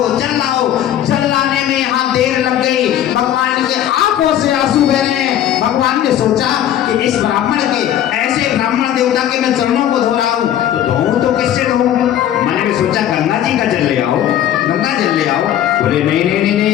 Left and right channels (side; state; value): right; quieter; 11.2 dB